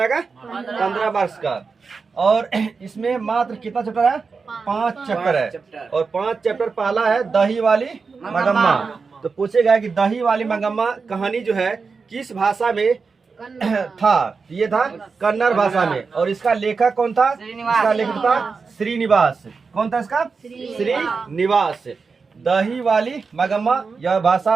का? 15 मार्क्स का। और इसमें मात्र कितना चैप्टर है? 5 चैप्टर है। और 5 चैप्टर पहला है दही वाली मगम्मा। तो पूछेगा कि दही वाली मगम्मा कहानी जो है किस भाषा में था? ये था कन्नड़ भाषा में। और इसका लेखक कौन था? इसका लेखक था श्रीनिवास। कौन था इसका? श्रीनिवास। दही वाली मगम्मा यह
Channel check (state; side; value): quieter; left; 4.8 dB